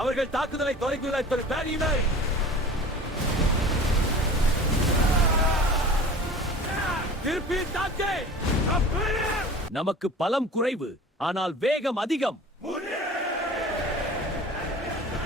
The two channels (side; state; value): both; normal; correlation 0.40